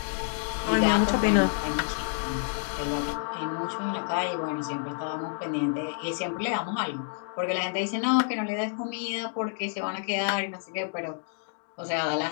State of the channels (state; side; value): silent; right; digital silence